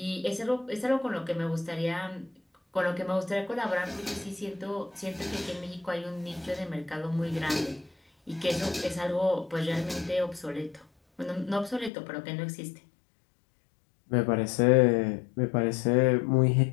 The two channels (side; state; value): right; drops out; at 11.9 s